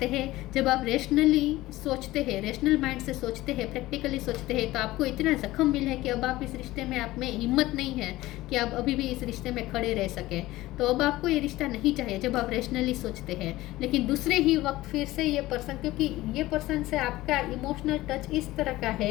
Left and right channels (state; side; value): quieter; right; 17.5 dB